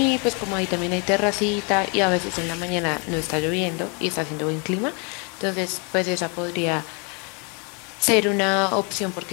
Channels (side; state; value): right; quieter; 35.0 dB